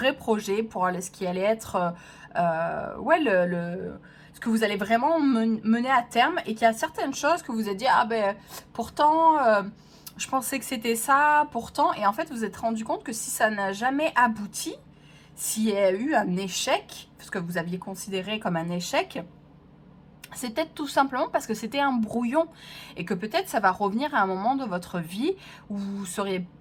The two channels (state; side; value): identical; both; correlation 1.00